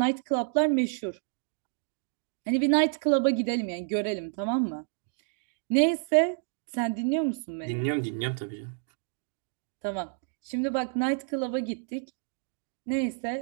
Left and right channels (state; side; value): silent; left; digital silence